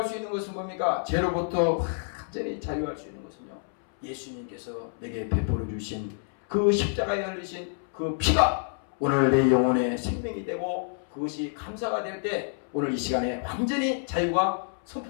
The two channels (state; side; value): silent; right; 59 dB below the other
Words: 수 있는 것은 뭡니까? 죄로부터 완전히 자유할 수 있는 것은요, 예수님께서 내게 베풀어 주신 그 십자가에 흘리신 그 피가 오늘 내 영혼의 생명이 되고 그것이 감사가 될 때 오늘 이 시간에 완전히 자유가